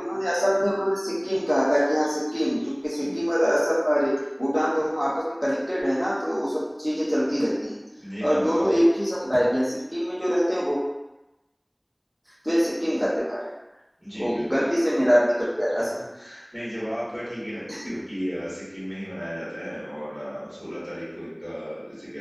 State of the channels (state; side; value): identical; both; correlation 1.00